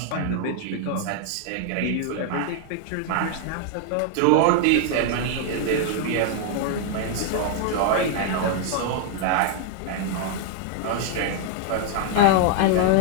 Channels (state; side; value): different; both; correlation 0.00